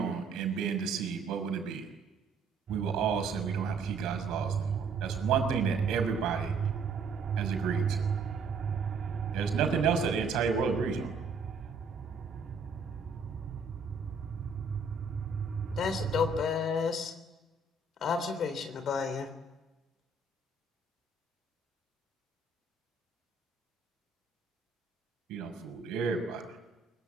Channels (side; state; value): left; quieter; 3.9 dB